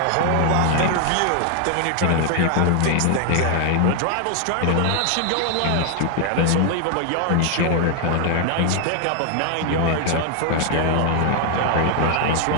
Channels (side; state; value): both; different; correlation 0.00